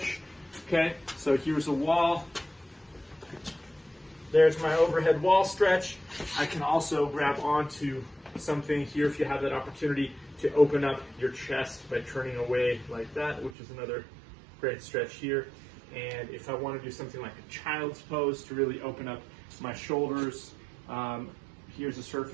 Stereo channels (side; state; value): left; drops out; at 13.6 s